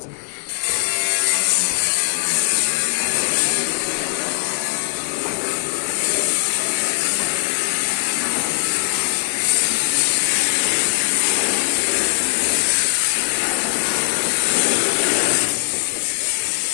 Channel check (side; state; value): right; silent; digital silence